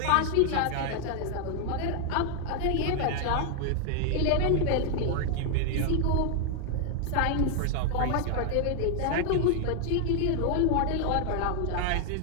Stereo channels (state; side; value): different; both; correlation 0.00